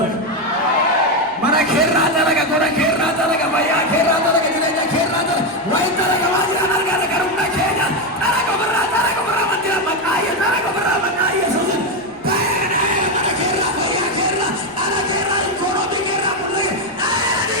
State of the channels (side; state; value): left; noise; rumble, 30 dB below the sound